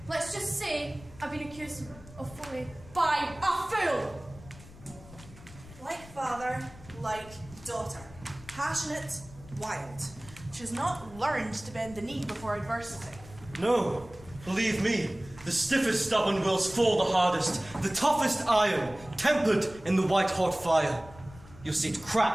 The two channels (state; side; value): noise; left; rumble, 19 dB below the sound